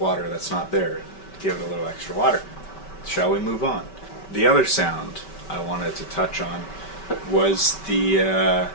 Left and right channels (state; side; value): late; right; 5.2 ms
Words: that's not there. Give it a little extra water. Shall we move on? The other sound I wanted to touch on was the